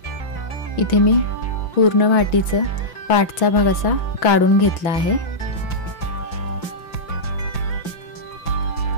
इथे मी पूर्ण वाटीचं पाठचा भाग असा काढून घेतला आहे।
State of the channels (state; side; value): late; right; 5.9 ms